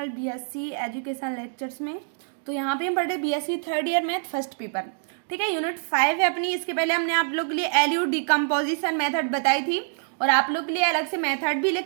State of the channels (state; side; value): silent; left; digital silence